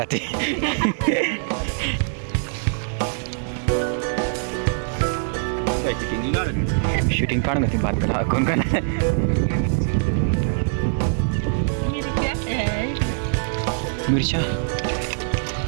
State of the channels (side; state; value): left; silent; 64 dB below the other